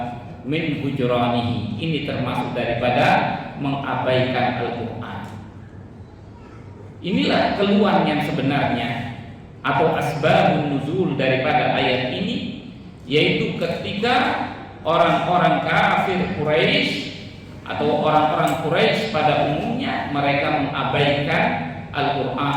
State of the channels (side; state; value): both; identical; correlation 1.00